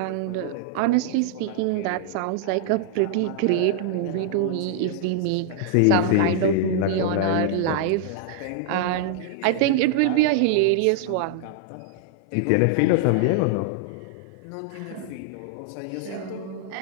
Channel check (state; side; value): different; both; correlation -0.01